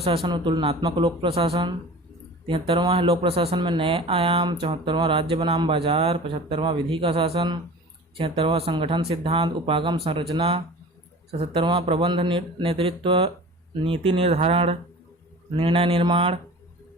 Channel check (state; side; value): normal; both; correlation 0.39